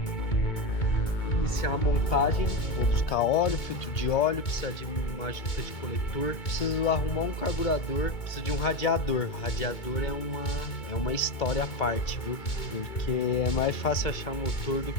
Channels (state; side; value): late; right; 2.2 ms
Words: Iniciar a montagem, vou buscar óleo, filtro de óleo, precisa de uma junta de coletor, preciso arrumar um carburador, preciso de um radiador. Radiador é uma história à parte, viu? Porque é mais fácil achar motor do